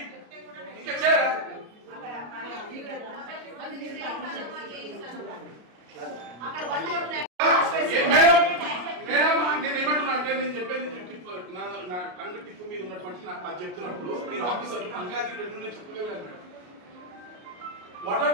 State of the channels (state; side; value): late; left; 33 ms